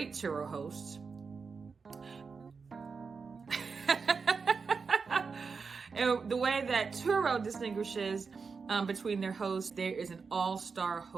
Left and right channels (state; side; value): quieter; left; 5.1 dB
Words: Turo hosts. And the way that Turo distinguishes between their hosts, there is an all-star